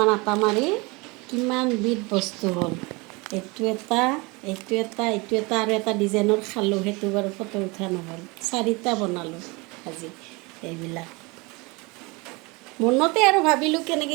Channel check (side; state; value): left; quieter; 26.2 dB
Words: আটা মাৰি কিমান বিধ বস্তু হ'ল এইটো এটা আৰু এটা ডিজাইনৰ খালোঁ সেইটো বাৰু ফটো উঠা নহ'ল 4টা বনালোঁ আজি এইবিলাক মনতে আৰু ভাবিলোঁ